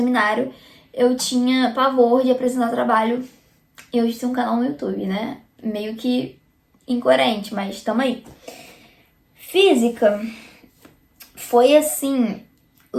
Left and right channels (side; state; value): both; identical; correlation 1.00